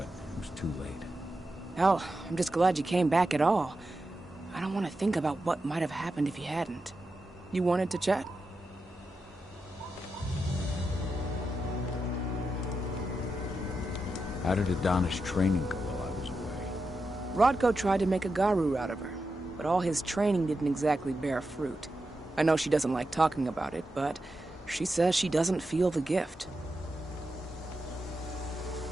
it was too late. Hell, I'm just glad you came back at all. I don't want to think about what might have happened if you hadn't. You wanted to chat? How did Aedana's training go while I was away? Rodko tried to make a Garu out of her, but all his training didn't exactly bear fruit. I know she doesn't like talking about it, but she says she doesn't feel the gift.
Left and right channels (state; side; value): normal; both; correlation 0.88